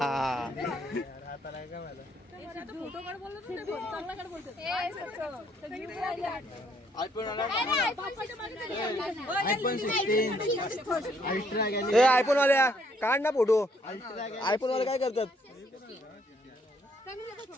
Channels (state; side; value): normal; both; correlation 0.68